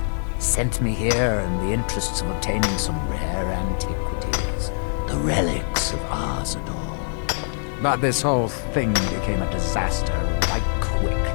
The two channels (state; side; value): silent; right; digital silence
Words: Sent me here in the interests of obtaining some rare antiquities. The relics of Arzador. But this whole thing became a disaster right quick,